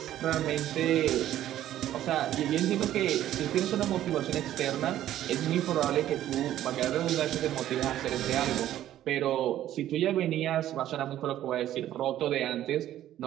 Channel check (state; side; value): quieter; left; 12.6 dB